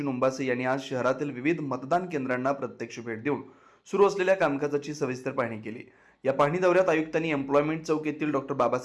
ओंबासे यांनी आज शहरातील विविध मतदान केंद्रांना प्रत्यक्ष भेट देऊन सुरू असलेल्या कामकाजाची सविस्तर पाहणी केली. या पाहणी दौऱ्यात आयुक्तांनी एम्प्लॉयमेंट चौक येथील doctor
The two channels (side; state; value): both; identical; correlation 1.00